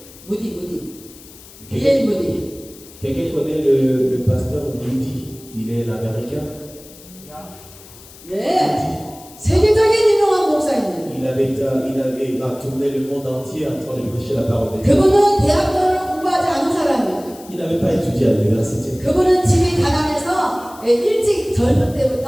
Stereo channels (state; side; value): noise; left; hiss, 21 dB below the sound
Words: 무디. 비엘 무디. Quelqu'un connaît le pasteur Moody? Il est l'américain. 네. 세계적인 유명한 목사입니다. Il a tourné le monde entier en train de prêcher la parole de Dieu. 그분은 대학교를 공부하지 않은 사람이에요. Il n'avait pas étudié à l'université. 그분은 집이 가난해서 일찍 젊은